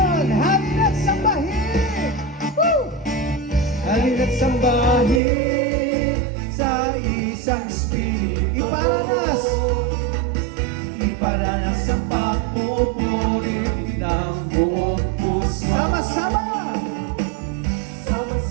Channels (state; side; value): drops out; left; at 5.2 s